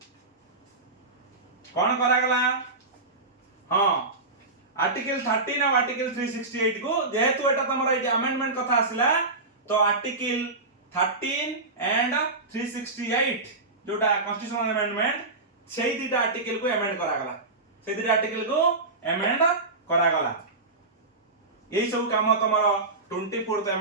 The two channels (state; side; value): quieter; left; 3.3 dB